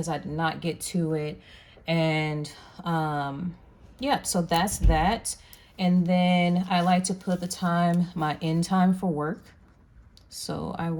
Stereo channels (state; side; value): identical; both; correlation 1.00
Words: I did not get to it. And, yeah, so that's that. And then I like to put the time, my end time for work. So I